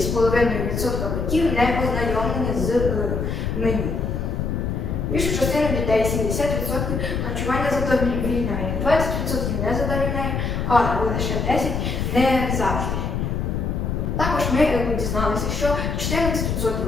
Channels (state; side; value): noise; left; rumble, 1 dB below the sound